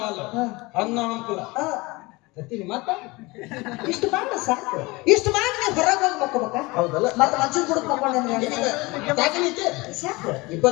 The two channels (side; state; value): right; quieter; 23.5 dB